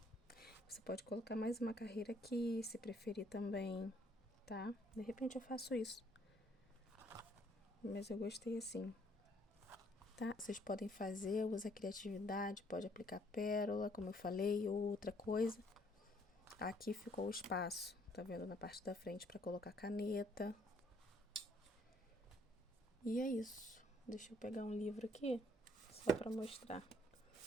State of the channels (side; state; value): both; normal; correlation 0.65